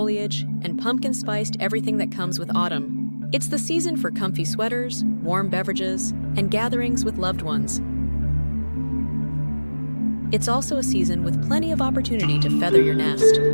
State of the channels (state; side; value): inverted; both; correlation -1.00